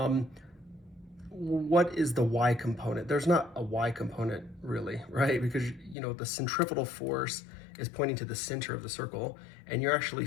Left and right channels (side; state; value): right; drops out; at 6.0 s